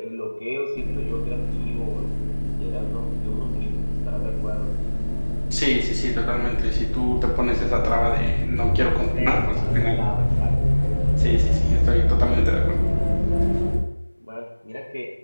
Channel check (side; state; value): both; inverted; correlation -1.00